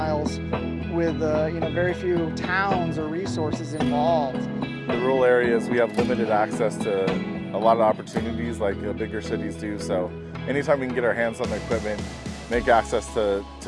with very few towns or resources involved. The rural areas, we have limited access to a lot of opportunities like bigger cities do. So anytime we can get our hands on the equipment, make access to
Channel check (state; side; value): identical; both; correlation 1.00